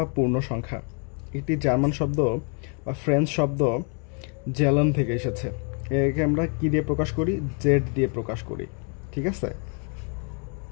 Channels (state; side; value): quieter; right; 39.9 dB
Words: পূর্ণ সংখ্যা একটি জার্মান শব্দ বা ফ্রেঞ্চ শব্দ জেলন থেকে এসেছে। একে আমরা কি দিয়ে প্রকাশ করি? জেড দিয়ে প্রকাশ করি, ঠিক আছে।